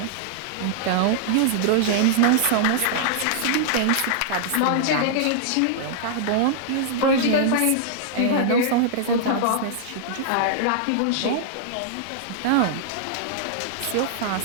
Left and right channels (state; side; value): different; both; correlation -0.01